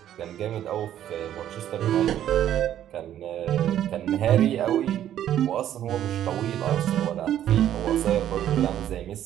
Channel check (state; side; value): quieter; left; 11.2 dB